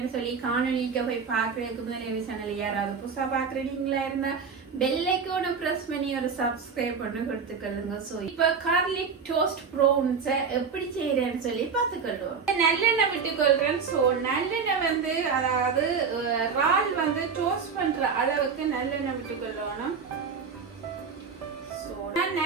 சொல்லி காணொலிக்கு போய் பார்க்குறதுக்கு முதல் சேனல் யாராவது புதுசாக பார்க்குறீங்களா இருந்தால் பெல் ஐக்கானை ப்ரெஸ் பண்ணி ஒரு சப்ஸ்கிரைப் பண்ணி கொடுத்துக்கொள்ளுங்க. ஸோ இப்போ கார்லிக் டோஸ்ட் ப்ரௌன்ஸை எப்படி செய்கிறேன்னு சொல்லி பார்த்துக்கொள்ளுவோம். நல்லெண்ணெய் விட்டுக்கொள்கிறேன். ஸோ நல்லெண்ணெய் வந்து அதாவது ரால் வந்து டோஸ்ட் பண்ணுற அளவுக்கு நல்லெண்ணெய் விட்டுக்கொள்ளணும். ஸோ நான்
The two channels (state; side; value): quieter; left; 5.8 dB